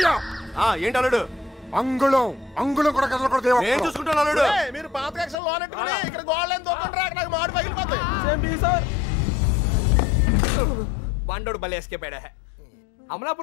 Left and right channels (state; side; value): drops out; right; at 5.4 s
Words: ఏంటి అల్లుడు? అంగుళం కూడా కదలకూడదు. నేను చూసుకుంటాను అల్లుడు. మీరు పాత కక్షలు లోనెట్టుకుని ఇక్కడ గోడలేని దొక్కండి, నాకు మాడు పగిలిపోతాయి. బండోడు భలే ఎస్కేపాడా.